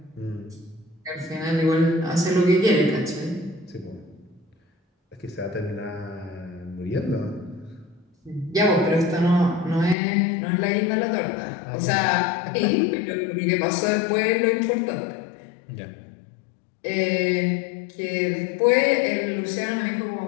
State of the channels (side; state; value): right; drops out; at 10.0 s